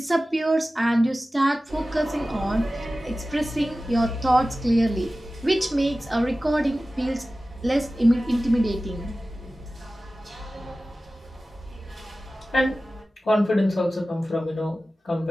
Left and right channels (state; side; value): normal; both; correlation 0.96